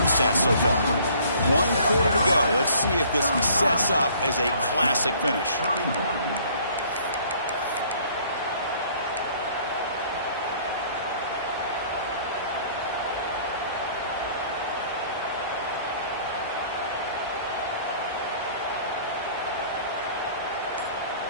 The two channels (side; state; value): both; inverted; correlation -0.55